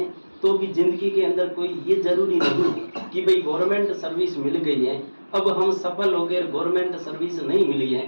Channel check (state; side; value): inverted; both; correlation -1.00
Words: तो भी जिंदगी के अंदर कोई ये जरूरी नहीं है कि भाई गवर्नमेंट सर्विस मिल गई है, अब हम सफल हो गए, गवर्नमेंट सर्विस नहीं मिली है